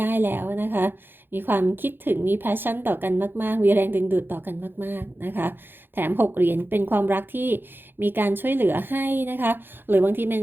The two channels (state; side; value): late; left; 0.10 ms